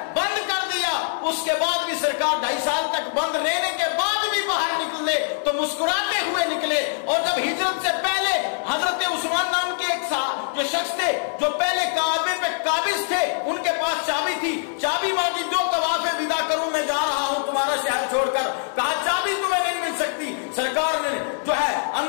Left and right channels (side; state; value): right; silent; 63 dB below the other